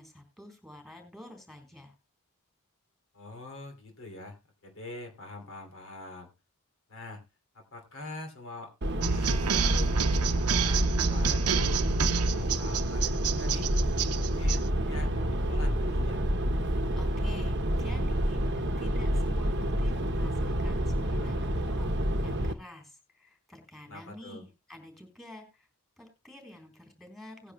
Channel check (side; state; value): both; normal; correlation 0.71